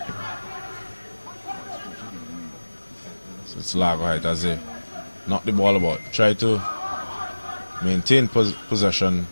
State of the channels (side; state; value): both; inverted; correlation -1.00